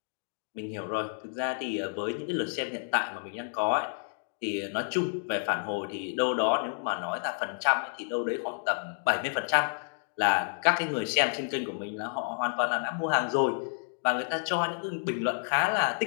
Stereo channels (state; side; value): silent; right; digital silence